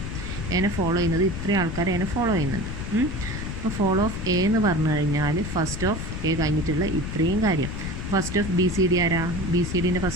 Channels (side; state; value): left; noise; rumble, 6 dB below the sound